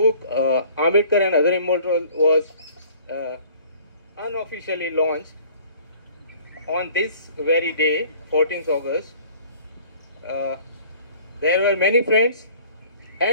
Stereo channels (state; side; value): inverted; both; correlation -0.51